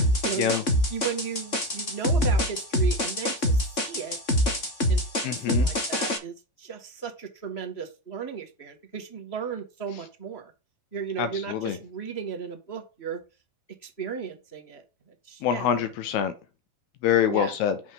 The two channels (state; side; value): late; right; 3.6 ms